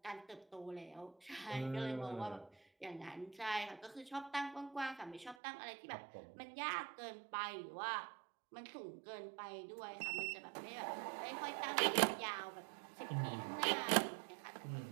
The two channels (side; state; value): left; drops out; at 5.4 s